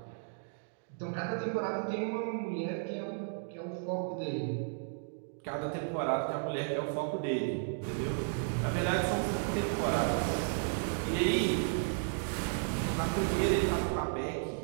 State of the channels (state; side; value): silent; left; digital silence